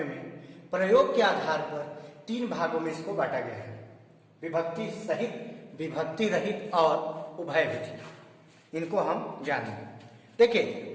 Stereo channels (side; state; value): both; identical; correlation 1.00